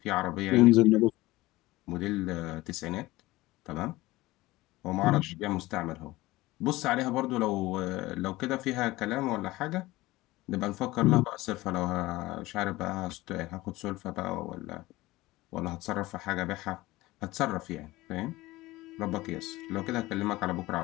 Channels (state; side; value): quieter; right; 19.0 dB